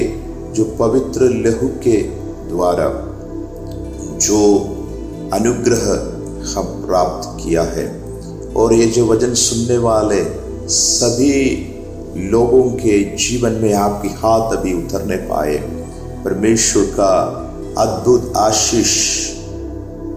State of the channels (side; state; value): both; identical; correlation 1.00